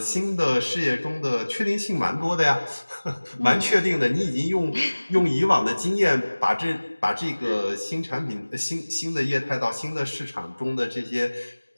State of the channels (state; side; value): inverted; both; correlation -1.00